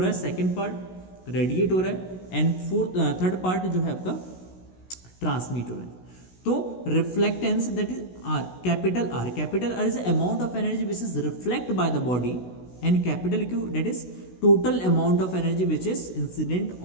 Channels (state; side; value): late; right; 16 ms